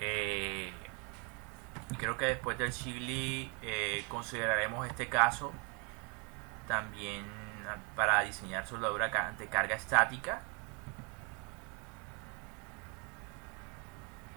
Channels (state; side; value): quieter; left; 33.3 dB